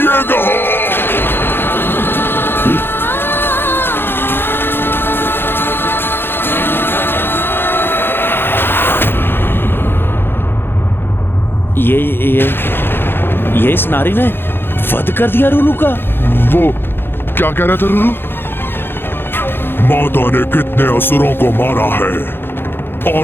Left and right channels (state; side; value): late; right; 0.10 ms